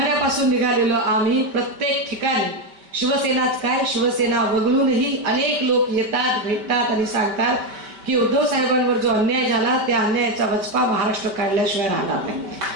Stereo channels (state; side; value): late; left; 5.2 ms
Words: निघालेलो आम्ही प्रत्येक ठिकाणी शिवसेनाच काय, शिवसेना वगळूनही अनेक लोक येतात, भेटतात आणि सांगतात की उद्धव साहेबांवर जो अन्याय झाला त्या अन्यायाचा वचपा महाराष्ट्र काढल्याशिवाय राहणार नाही.